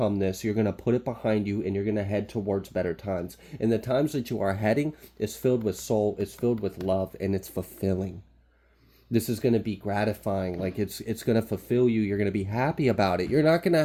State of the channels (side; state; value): both; identical; correlation 1.00